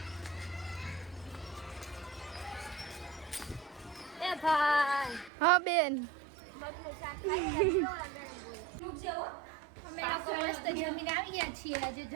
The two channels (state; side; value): drops out; left; at 5.3 s